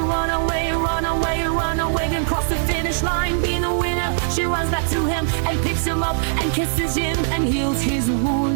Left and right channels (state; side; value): silent; left; digital silence